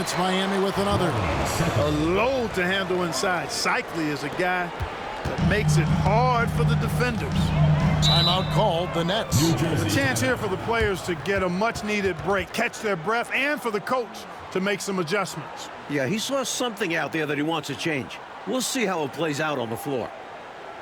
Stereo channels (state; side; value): identical; both; correlation 1.00